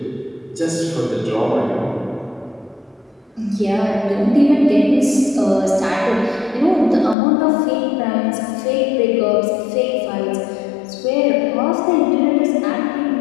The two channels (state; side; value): drops out; right; at 7.2 s